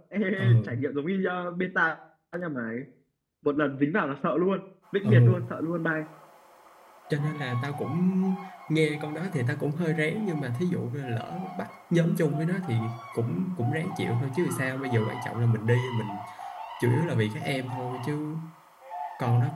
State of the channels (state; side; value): identical; both; correlation 1.00